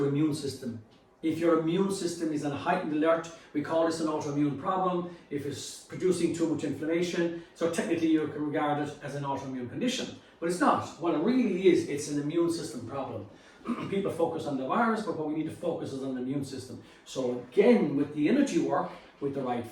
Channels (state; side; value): identical; both; correlation 1.00